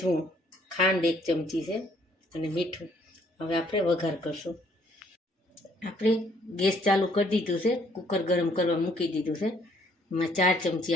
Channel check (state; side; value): normal; both; correlation 0.65